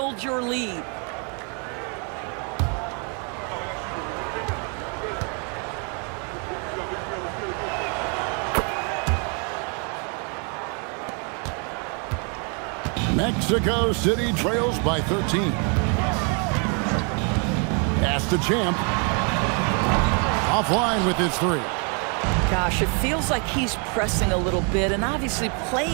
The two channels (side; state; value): left; quieter; 37.3 dB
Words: your lead. Mexico City trails by 13. Pass to Champ. Offline with his 3. Gosh, it feels like he's pressing a little bit, and obviously